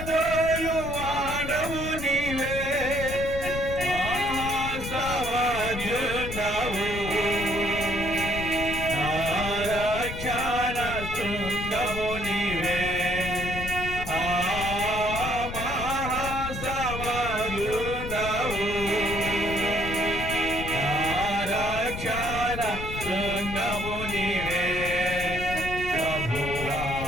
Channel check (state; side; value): noise; left; rumble, 7 dB below the sound